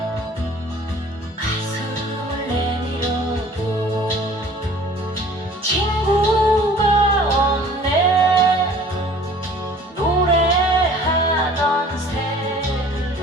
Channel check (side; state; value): both; normal; correlation 0.50